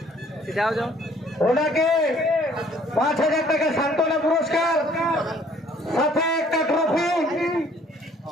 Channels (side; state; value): both; normal; correlation 0.59